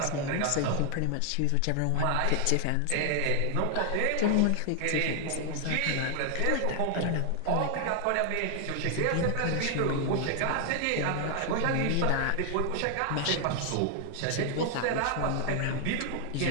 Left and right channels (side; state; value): both; different; correlation 0.00